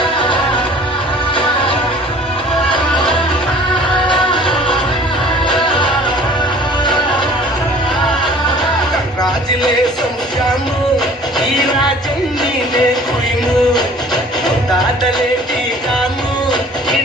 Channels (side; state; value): both; normal; correlation 0.49